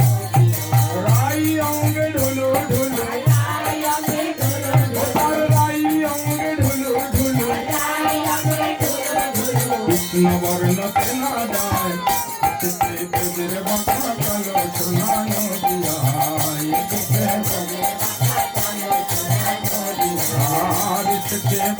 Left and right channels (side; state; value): both; identical; correlation 1.00